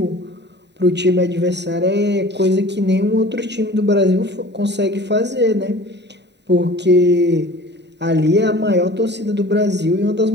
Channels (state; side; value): late; left; 0.50 ms